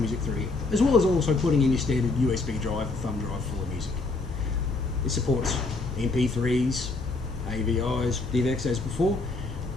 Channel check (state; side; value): quieter; right; 3.5 dB